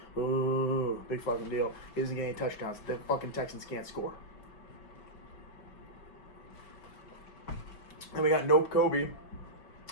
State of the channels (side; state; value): right; late; 5.2 ms